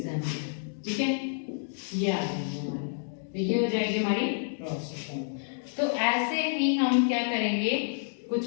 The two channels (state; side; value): silent; right; digital silence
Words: ठीक है, ये आ जाएंगे हमारे, तो ये हो जाएगी हमारी रोस्टर फॉर्म। तो ऐसे ही हम क्या करेंगे,